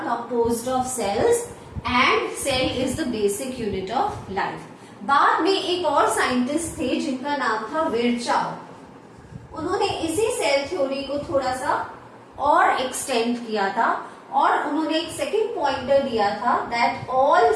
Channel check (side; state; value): both; identical; correlation 1.00